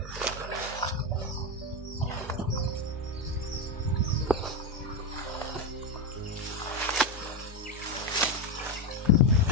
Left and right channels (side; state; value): both; normal; correlation 0.11